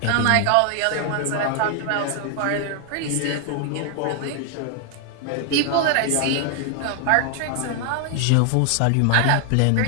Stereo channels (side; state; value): both; different; correlation 0.00